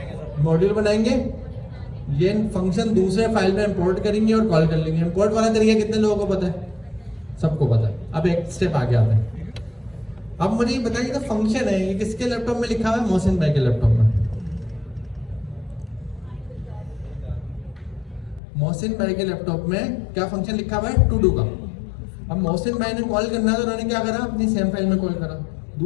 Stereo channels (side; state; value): right; drops out; at 18.4 s